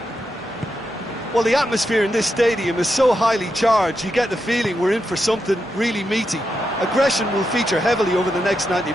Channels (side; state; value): both; normal; correlation 0.85